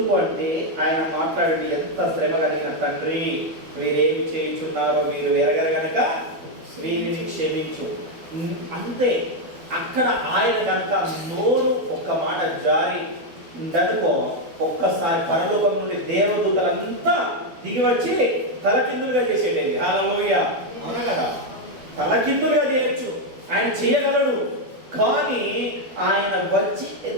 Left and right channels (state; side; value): late; left; 12 ms